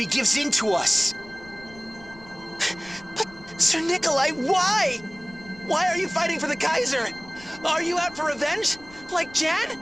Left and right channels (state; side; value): noise; left; rumble, 22 dB below the sound